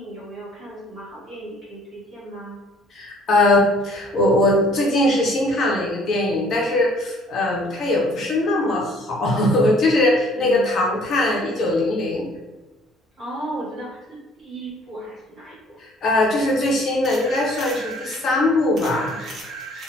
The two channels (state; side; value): normal; both; correlation 0.57